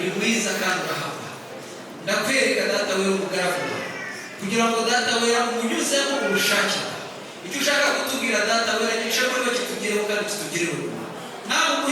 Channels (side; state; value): both; identical; correlation 1.00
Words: mwiza kandi urahaba. Ndakwereka data wera umugaragu kugira ngo data wera umunyuzemo ubushake icyo ushaka kutubwira data wera gishobora kuba kitugereho kandi kitugereho. Nawe